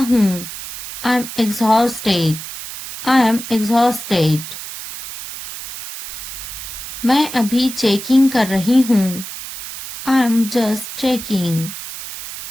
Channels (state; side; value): noise; right; hiss, 10 dB below the sound